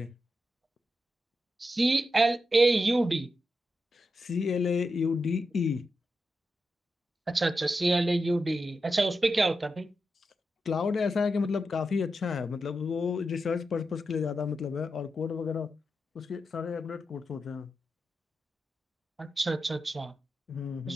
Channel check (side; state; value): both; normal; correlation 0.88